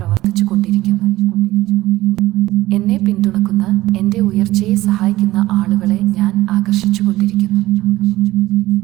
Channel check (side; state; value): left; quieter; 16.9 dB